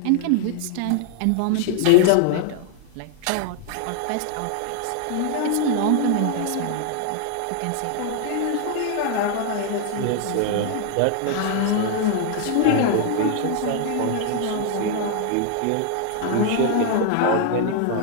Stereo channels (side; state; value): both; different; correlation 0.00